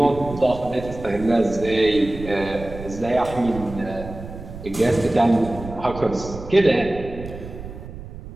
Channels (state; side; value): noise; right; rumble, 12 dB below the sound